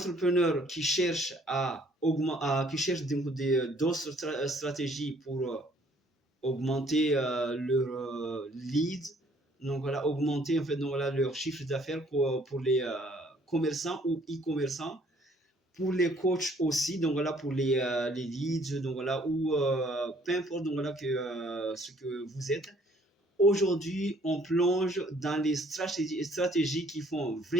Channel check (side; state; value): both; normal; correlation 0.61